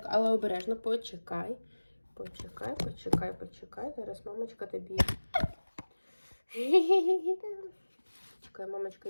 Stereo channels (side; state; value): both; inverted; correlation -1.00